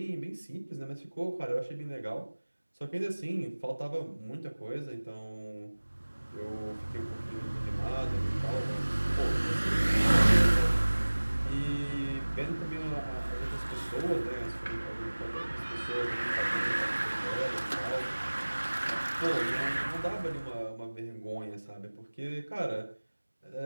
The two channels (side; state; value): both; inverted; correlation -1.00